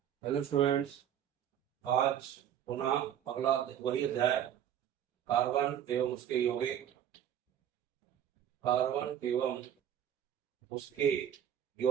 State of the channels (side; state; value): left; quieter; 10.0 dB